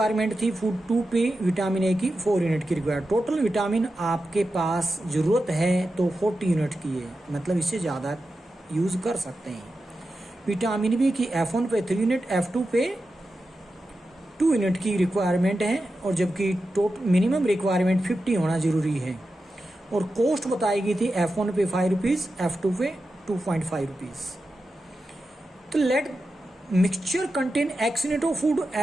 थी, फूड 2 पे विटामिन ए की 4 यूनिट की रिक्वायरमेंट। टोटल विटामिन आपके पास ज़रूरत है तो 40 यूनिट की है, मतलब इससे ज़्यादा यूज़ कर सकते हैं। विटामिन बी की F1 पे 3 यूनिट, F2 पे 2 यूनिट की रिक्वायरमेंट है, और जबकि टोटल मिनिमम रिक्वायरमेंट 50 होना ज़रूरी है। और कॉस्ट बताई गई थी F1 पे 5 रुपीज़, F2 पे 2.5 रुपीज़। तो let mixture contain X unit of food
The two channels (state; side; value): normal; both; correlation 0.91